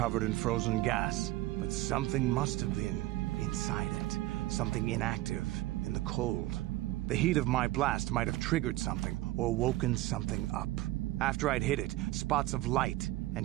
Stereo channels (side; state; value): left; quieter; 17.0 dB